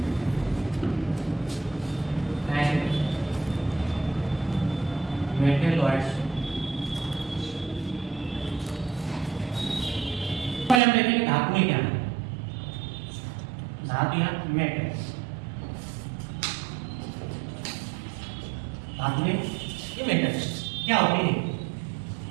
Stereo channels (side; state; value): left; drops out; at 10.8 s